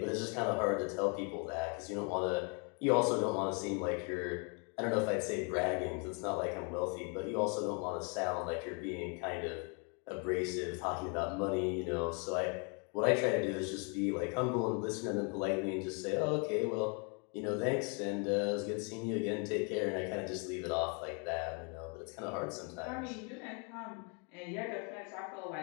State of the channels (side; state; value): right; quieter; 36.2 dB